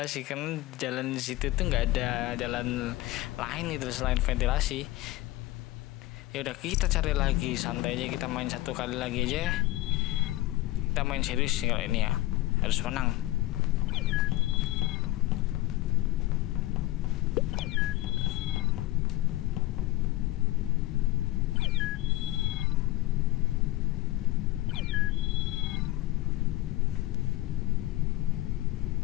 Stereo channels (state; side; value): quieter; right; 17.6 dB